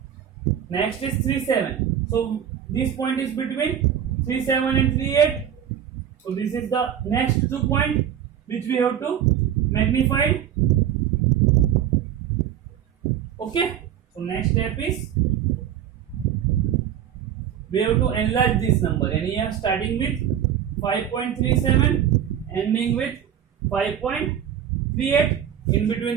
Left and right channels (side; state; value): left; quieter; 9.6 dB